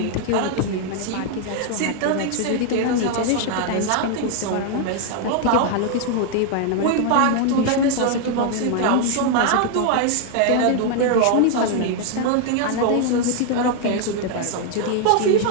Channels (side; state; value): both; different; correlation 0.00